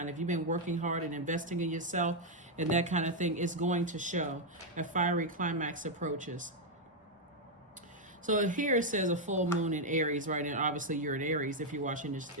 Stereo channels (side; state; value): both; normal; correlation 0.00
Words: If you've been working hard and investing in yourself and that kind of thing, it's going to show. A fiery climax approaches. So here it says a full moon in Aries, right? And obviously you're in Aries if you're